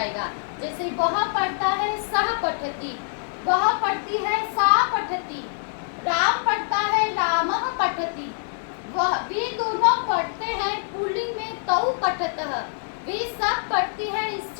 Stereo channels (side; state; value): right; silent; digital silence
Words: जैसे वह पढ़ता है, सह पठति, वह पढ़ती है, सा पठति, राम पढ़ता है, रामः पठति, वह, वे दोनों पढ़ते हैं पुल्लिंग में, तौ पठतः, वे सब पढ़ती है